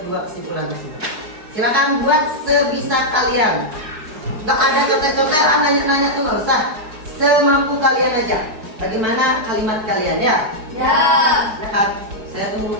dua kesimpulan tersebut. Silakan buat sebisa kalian. Gak ada contek-contekan, nanya-nanya tuh nggak usah. Semampu kalian aja. Bagaimana kalimat kalian ya? Ya. Silakan, saya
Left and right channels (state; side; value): late; left; 4.7 ms